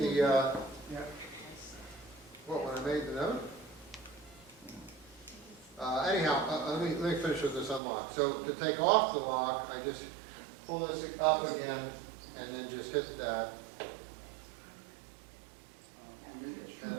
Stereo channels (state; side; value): drops out; left; at 7.8 s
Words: Yeah. what, when I made the note? Anyhow, let me finish with this unlock. So to take off the lock, I just pull this up again and then just hit that. And